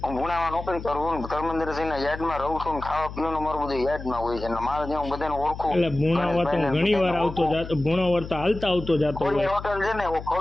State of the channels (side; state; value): left; noise; hum, 11 dB below the sound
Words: ભુણામાં નોકરી કરું ધર્મેન્દ્ર સિંહ ના યાદમાં રહું છું. ખાવા પીવાનું મારું બધું યાદમાં હોય છે. મારે જે હું બધાને ઓળખું. એટલે ભુણાવા તો ઘણી વાર આવતો જાતો, ભુણાવર તો હાલતા આવતો જાતો. ખોડિયાર હોટલ છે ને,